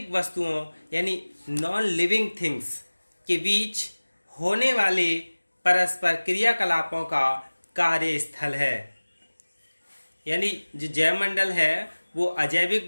वस्तुओं यानी नॉन लिविंग थिंग्स के बीच होने वाले परस्पर क्रियाकलापों का कार्यस्थल है। यानी जो जैव मंडल है वो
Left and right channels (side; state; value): both; inverted; correlation -1.00